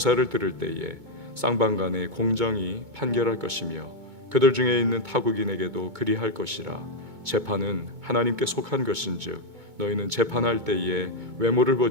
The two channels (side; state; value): left; late; 2.2 ms